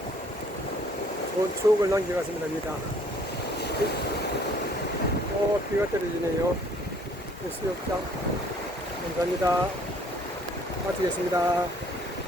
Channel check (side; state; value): both; normal; correlation 0.59